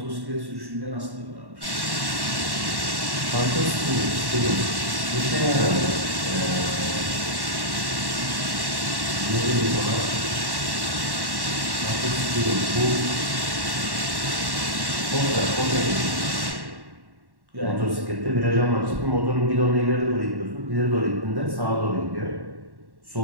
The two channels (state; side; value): late; left; 1.1 ms